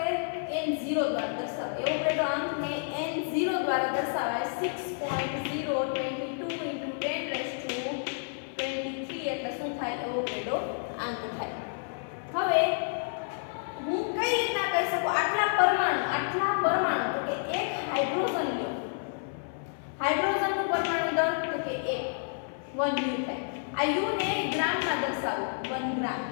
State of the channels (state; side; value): silent; right; 58 dB below the other